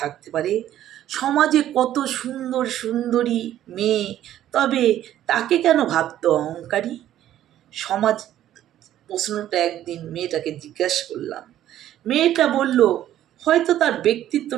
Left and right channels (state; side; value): quieter; left; 12.2 dB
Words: থাকতে পারে? সমাজে কত সুন্দর সুন্দরী মেয়ে, তবে তাকে কেন ভাবতো অহংকারী? সমাজ প্রশ্নটা একদিন মেয়েটাকে জিজ্ঞাসা করলাম। মেয়েটা বলল, হয়তো তার